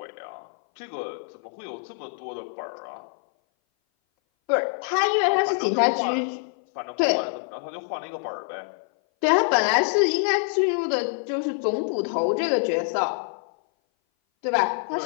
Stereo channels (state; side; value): silent; right; 58 dB below the other